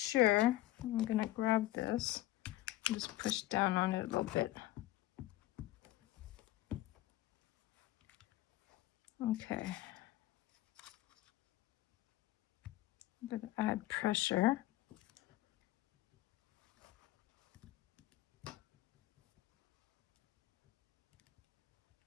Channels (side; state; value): right; quieter; 15.9 dB